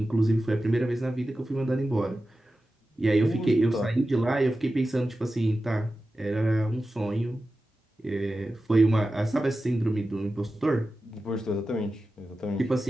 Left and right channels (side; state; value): both; normal; correlation 0.93